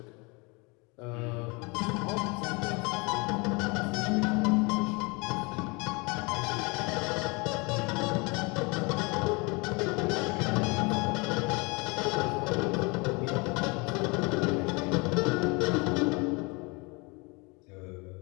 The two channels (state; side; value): quieter; right; 28.3 dB